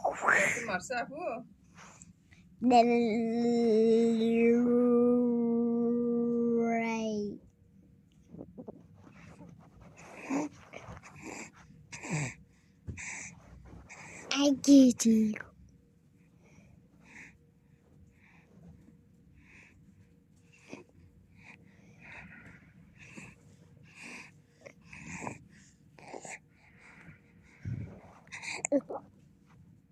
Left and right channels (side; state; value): both; identical; correlation 1.00